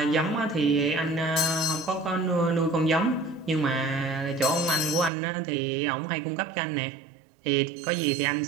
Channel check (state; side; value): drops out; left; at 5.1 s